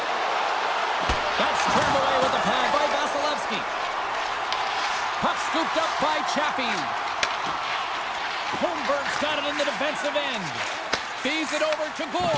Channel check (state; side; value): identical; both; correlation 1.00